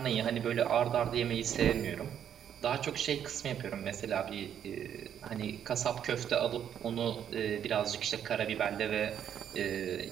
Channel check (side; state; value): left; quieter; 9.3 dB